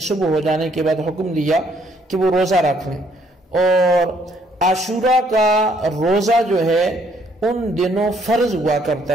ہو جانے کے بعد حکم دیا کہ وہ روزہ رکھ لیں، اور عاشورہ کا روزہ جو ہے ان دنوں فرض ہوا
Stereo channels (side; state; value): both; normal; correlation 0.67